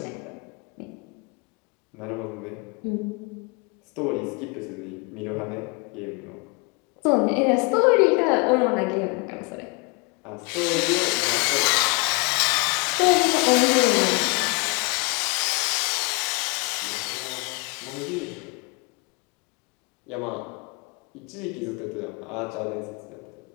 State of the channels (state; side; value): quieter; right; 30.0 dB